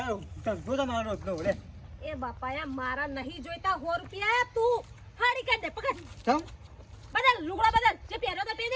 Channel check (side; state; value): both; identical; correlation 1.00